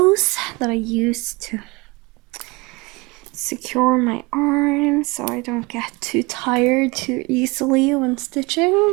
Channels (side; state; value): left; quieter; 25.1 dB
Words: that I use to secure my arms so I don't get too tired too easily when